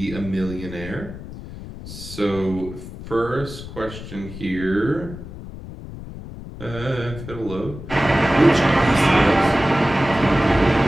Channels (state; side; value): noise; left; rumble, 12 dB below the sound